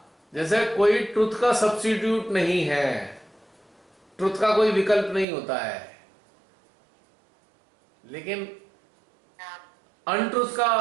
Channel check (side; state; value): left; drops out; at 5.2 s